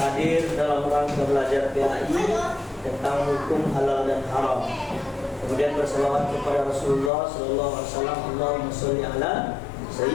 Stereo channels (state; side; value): drops out; right; at 7.1 s